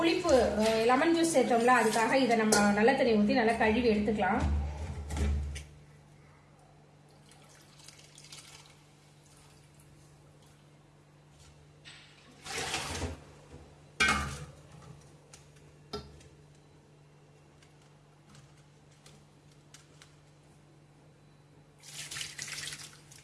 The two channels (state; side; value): identical; both; correlation 1.00